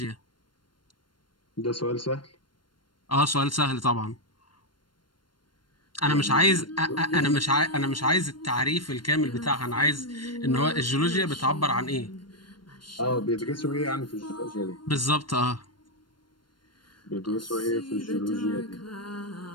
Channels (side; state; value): right; late; 0.72 ms